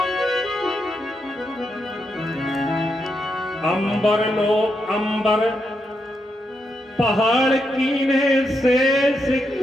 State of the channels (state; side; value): normal; both; correlation 0.82